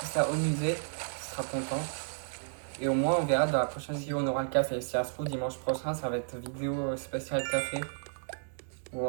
ça au musée. Il sera content. Et au moins, on verra dans la prochaine vidéo, on aura le café. Si ça se trouve, dimanche prochain, ça va être vidéo spéciale café.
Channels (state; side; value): silent; left; digital silence